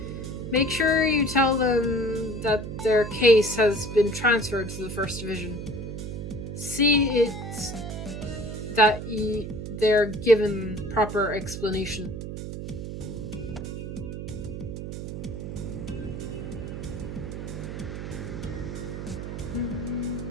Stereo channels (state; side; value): noise; right; hum, 7 dB below the sound